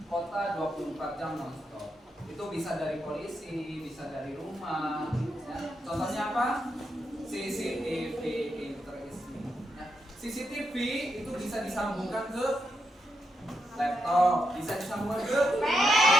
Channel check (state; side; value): normal; both; correlation 0.83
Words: kota 24 jam non-stop. Itu bisa dari polisi, bisa dari rumah, ya. Contohnya apa? CCTV interesting, ya. CCTV itu bisa disambungkan ke laptop, bisa disambungkan ke